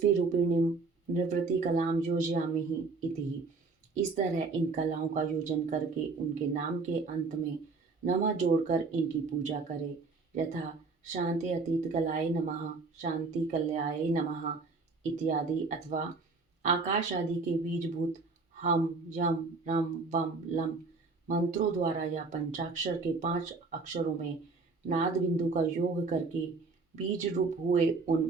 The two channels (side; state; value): left; quieter; 4.1 dB